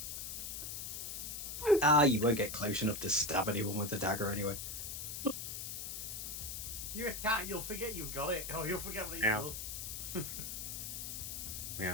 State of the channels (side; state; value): left; noise; hiss, 5 dB below the sound